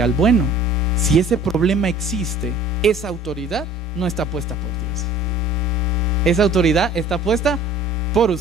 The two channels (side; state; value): both; normal; correlation 0.49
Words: al bueno. Si ese problema existe, esa autoridad no está puesta por Dios. Esa autoridad está puesta por